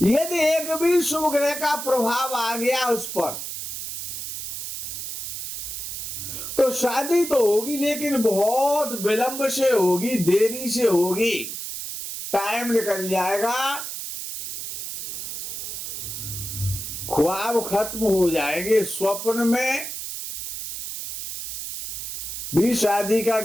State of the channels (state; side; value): noise; right; hiss, 6 dB below the sound